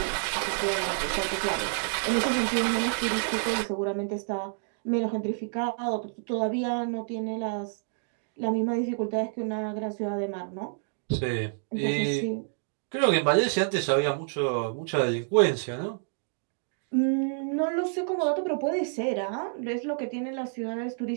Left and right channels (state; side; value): silent; left; digital silence